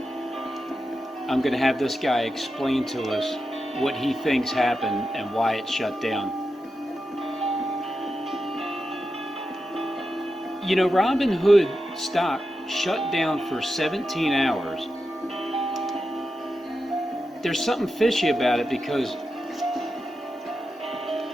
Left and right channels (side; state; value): both; normal; correlation 0.89